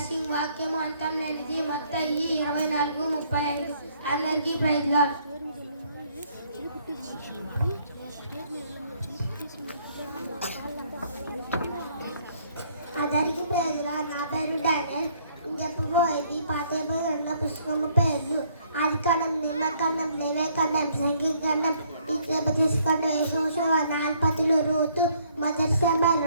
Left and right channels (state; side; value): inverted; both; correlation -0.65